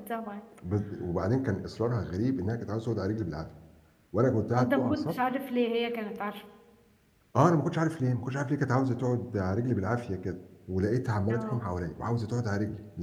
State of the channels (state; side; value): identical; both; correlation 1.00